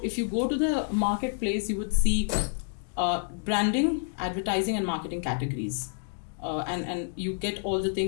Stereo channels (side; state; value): right; silent; digital silence